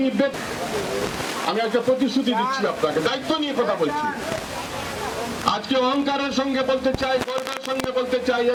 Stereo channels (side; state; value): both; identical; correlation 1.00